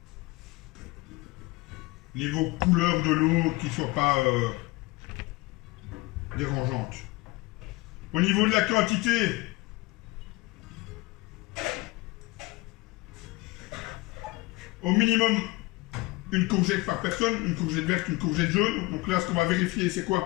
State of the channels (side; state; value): right; quieter; 21.6 dB